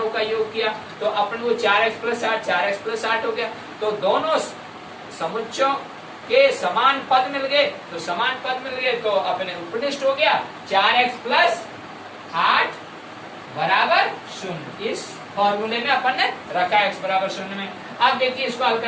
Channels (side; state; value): both; identical; correlation 1.00